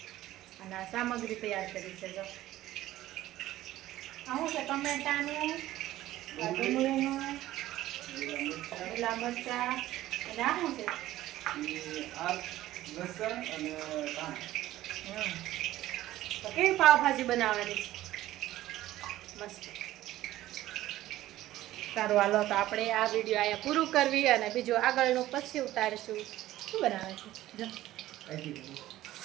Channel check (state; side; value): quieter; left; 15.0 dB